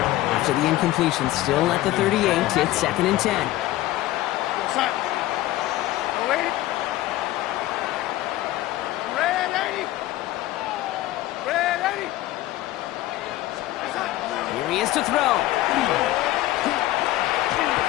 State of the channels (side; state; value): right; quieter; 16.0 dB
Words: After the incompletion, still at the 38, it's 2nd and 10. Here he is to throw.